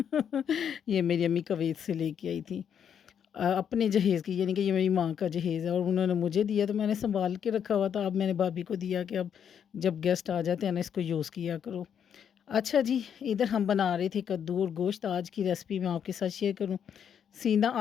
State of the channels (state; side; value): quieter; right; 8.2 dB